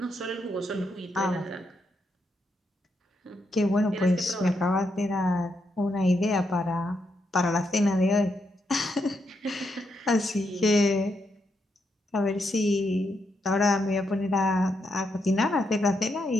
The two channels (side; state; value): both; normal; correlation 0.80